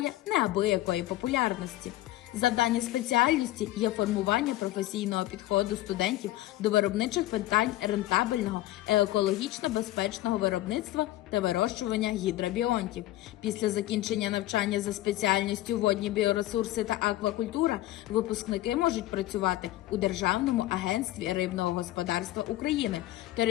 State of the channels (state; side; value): quieter; right; 15.9 dB